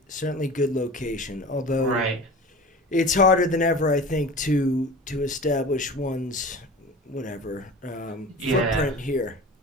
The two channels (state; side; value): normal; both; correlation 0.36